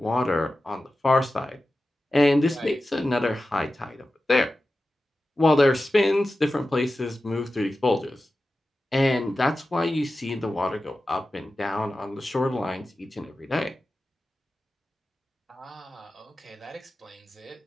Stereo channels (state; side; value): normal; both; correlation 0.94